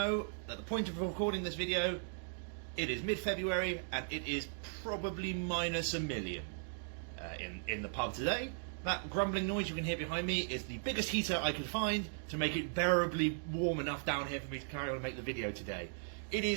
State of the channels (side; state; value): left; silent; digital silence